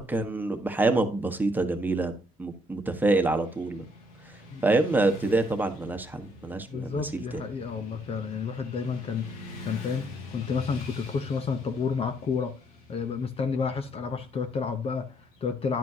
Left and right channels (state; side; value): normal; both; correlation 0.69